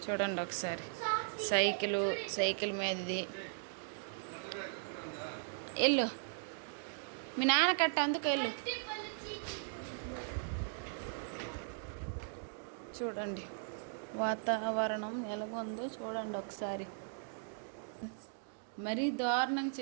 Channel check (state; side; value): silent; left; digital silence